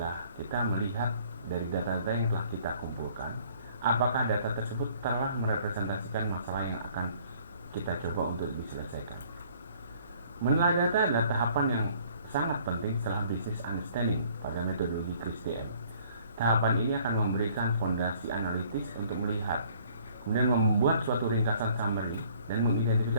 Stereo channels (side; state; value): both; inverted; correlation -0.58